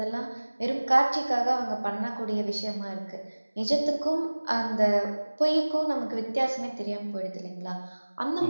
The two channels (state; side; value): inverted; both; correlation -1.00